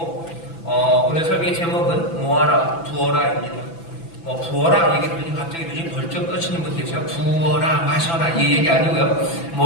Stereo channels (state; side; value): late; right; 6.0 ms